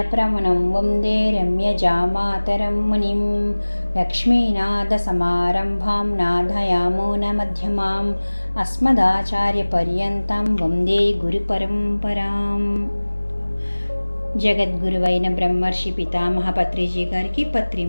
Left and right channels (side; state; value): both; inverted; correlation -1.00